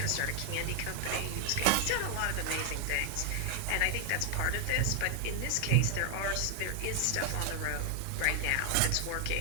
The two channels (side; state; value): both; different; correlation 0.00